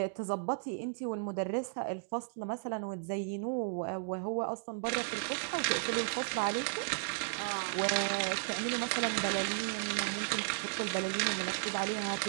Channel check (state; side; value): silent; left; digital silence